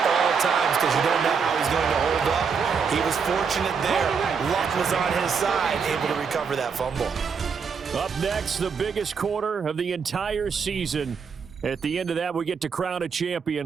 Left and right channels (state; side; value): quieter; left; 6.0 dB